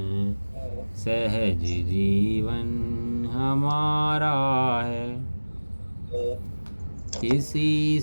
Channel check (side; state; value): both; inverted; correlation -1.00